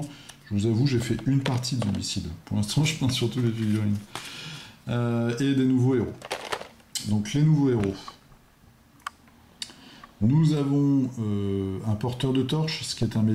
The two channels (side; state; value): both; identical; correlation 1.00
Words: je vous avoue, j'ai fait une partie de Zombicide. Pour l'instant, je pense surtout les figurines. Et des nouveaux héros. Donc, les nouveaux héros. Nous avons un porteur de torche, ce qui est un